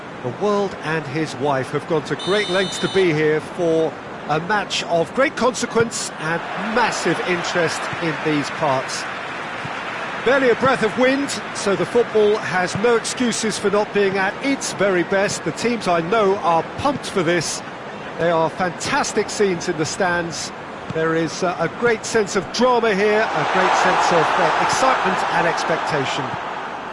The world and his wife have gone to great lengths to be here for a match of great consequence and massive interest in these parts. Barely a breath of wind, so the football has no excuses for not being at its very best. The teams I know are pumped for this. They are fantastic scenes in the stands. There is a great sense of drama here, a great sense of excitement and expectation.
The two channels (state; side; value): identical; both; correlation 1.00